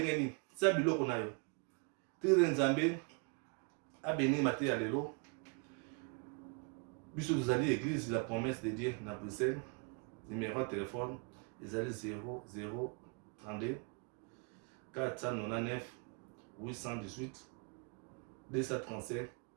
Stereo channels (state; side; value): quieter; left; 34.7 dB